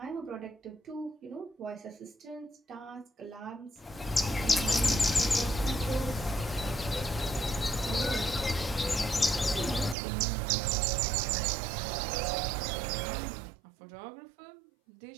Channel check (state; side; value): drops out; left; at 10.0 s